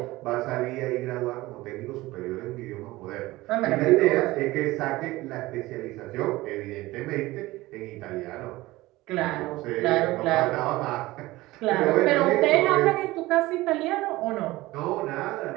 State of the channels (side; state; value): left; quieter; 19.0 dB